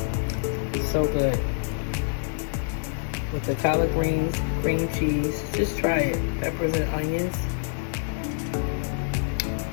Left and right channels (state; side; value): silent; right; digital silence